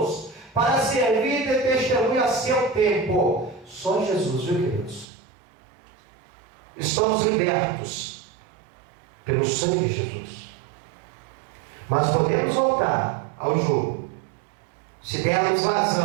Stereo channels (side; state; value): left; drops out; at 5.1 s